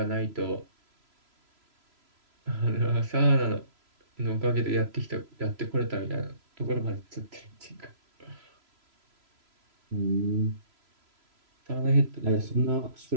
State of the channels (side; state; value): left; late; 3.0 ms